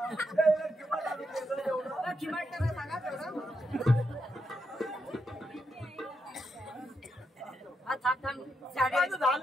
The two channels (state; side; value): normal; both; correlation 0.82